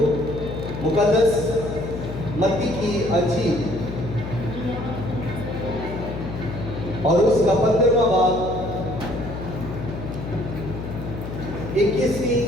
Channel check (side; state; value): left; noise; hum, 8 dB below the sound